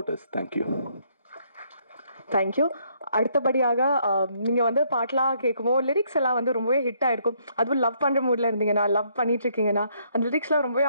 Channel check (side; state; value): both; inverted; correlation -0.70